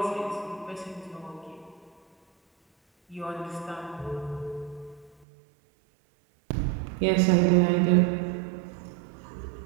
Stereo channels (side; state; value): left; drops out; at 5.2 s